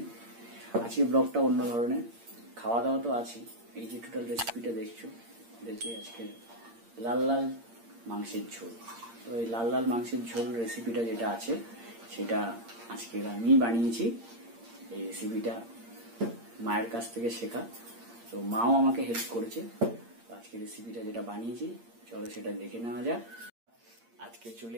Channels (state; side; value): late; left; 8.7 ms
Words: আজকে ব্লগটা অন্য ধরনের, খাওয়া দাওয়া তো আছে। এই যে টোটাল রেসিপিটা দেখছো, আজকে লাল লাল মাংসের ঝোল। তো এই লাল লাল মাংসের ঝোল রেসিপিটা যেটা আছে সেটা আজকে আমি বানিয়েছি। এই রেসিপিটা মায়ের কাছ থেকে শেখা, তো মাও আমাকে হেল্প করেছে। আজকে রেসিপিটা যেটা বানিয়েছি, চলো সেটা দেখে নেওয়া যাক। আজকে চলে